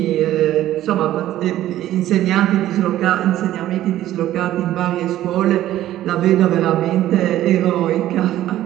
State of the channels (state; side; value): quieter; left; 13.5 dB